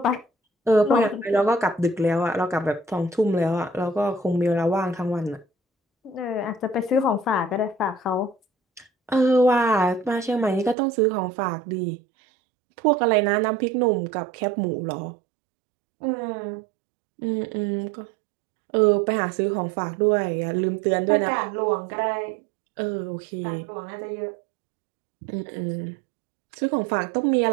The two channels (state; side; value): drops out; left; at 10.8 s